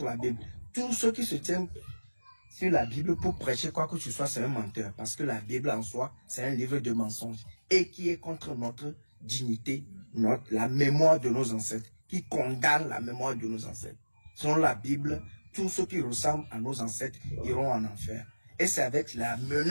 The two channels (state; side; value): inverted; both; correlation -1.00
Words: la Bible. Tous ceux qui se tiennent sur la Bible pour prêcher quoi que ce soit, c'est un menteur. Parce que la Bible en soi, c'est un livre de mensonges. Et qui est contre notre dignité, la mémoire de nos ancêtres. Qui condamne la mémoire de nos ancêtres. Selon la Bible, tous ceux qui ressemblent à nos ancêtres iront en enfer. Et c'est avec la